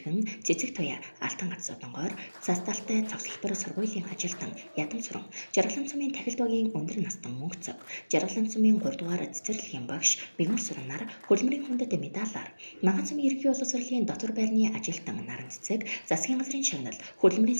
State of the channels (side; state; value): both; inverted; correlation -1.00